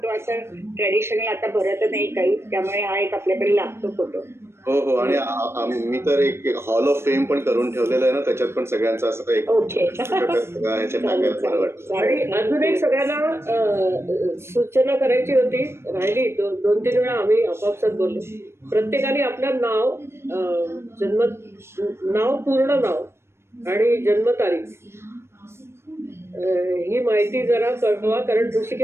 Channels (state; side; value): late; left; 0.12 ms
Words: असं ट्रेडिशनल आता भरत नाही काही, त्यामुळे हा एक आपल्याकडे लागतो फोटो. हो हो. आणि मी तर एक हॉल ऑफ फेम पण करून ठेवलेलं आहे ना, त्याच्यात पण सगळ्यांचं असं एक ह्याच्यात टाकायला बरं वाटतं. आणि अजून एक सगळ्यांना सूचना करायची होती, राहिली. 2-3 वेळा आम्ही आपापसात बोललो. प्रत्येकाने आपलं नाव, पूर्ण नाव आणि जन्मतारीख ही माहिती जरा कळवा, कारण